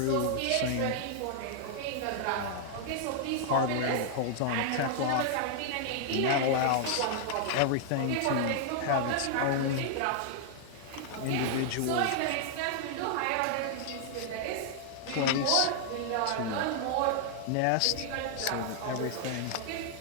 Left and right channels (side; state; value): both; different; correlation 0.00